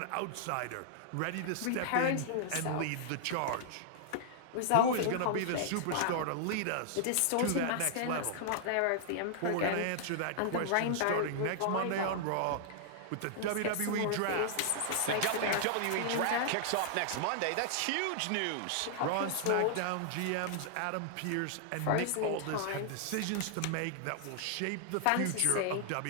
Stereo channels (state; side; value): different; both; correlation -0.01